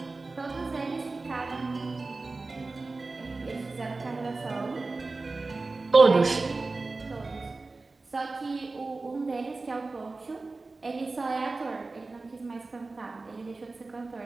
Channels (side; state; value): left; quieter; 3.6 dB